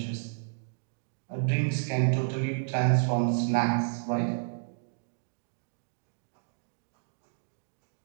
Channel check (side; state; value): left; silent; digital silence